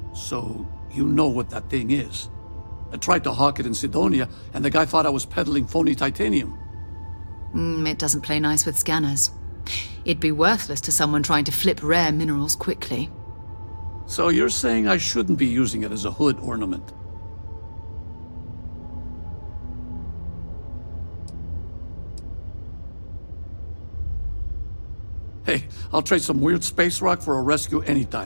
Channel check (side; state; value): both; inverted; correlation -1.00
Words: So, you know what that thing is? I tried to hawk it in Sidonia, and the guy thought I was peddling phony titanium. It doesn't play nice with scanners. It'd be worthless to someone trying to flip rare minerals quickly. So you're saying I shouldn't be using it as a hood ornament? Hey, I'll trade some weird space rock for a rescue